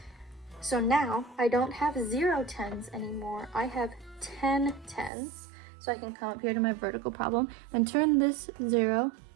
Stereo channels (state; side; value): drops out; left; at 5.1 s